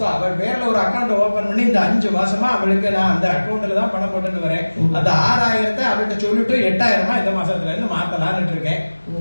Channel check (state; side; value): inverted; both; correlation -1.00